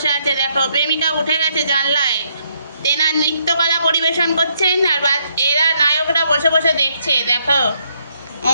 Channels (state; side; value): inverted; both; correlation -0.74